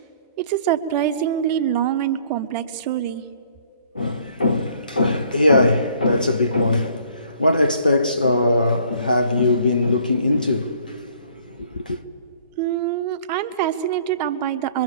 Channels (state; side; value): inverted; both; correlation -0.58